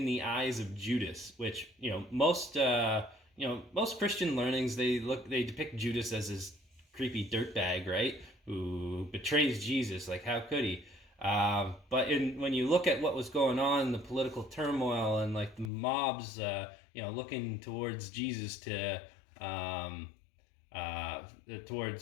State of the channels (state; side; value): drops out; right; at 15.7 s